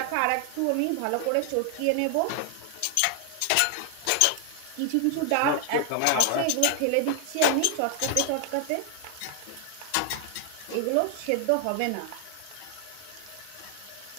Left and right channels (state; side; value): different; both; correlation 0.00